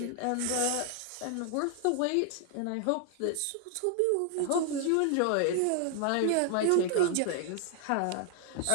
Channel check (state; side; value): different; both; correlation 0.00